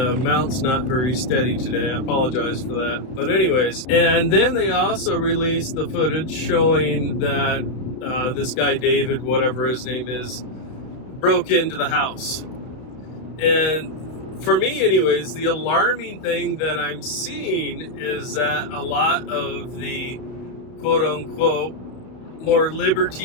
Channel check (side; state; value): right; late; 31 ms